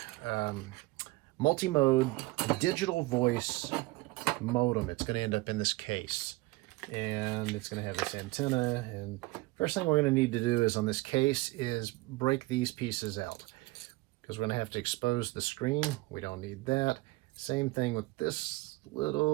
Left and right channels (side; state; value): left; quieter; 21.6 dB